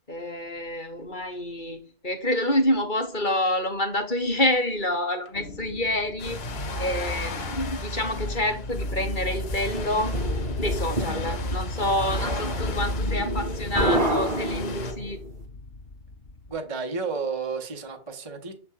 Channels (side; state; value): right; late; 2.3 ms